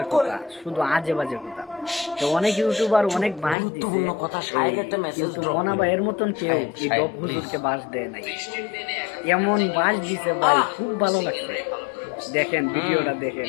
করেন। কথা, শুধু আজে বাজে কথা। তো অনেক ইউটিউবার অনেক বাস দিছে, গুরুত্বপূর্ণ কথা, শায়েক একটা মেসেজ কিন্তু ড্রপ মনা করে। ভাইয়ের মতন কেউ শায়েক, এই শায়েক, ডব হুজুরকে please। বাস দেয় নাই। এমন বাস দিছে ভাই, খুব ভালো লাগছে। দেখেন ভিডিওটা দেখেন,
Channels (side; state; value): right; drops out; at 3.6 s